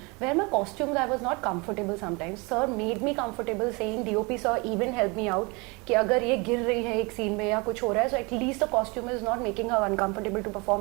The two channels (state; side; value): quieter; left; 28.1 dB